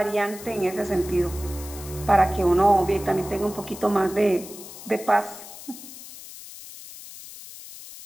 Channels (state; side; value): noise; left; hiss, 15 dB below the sound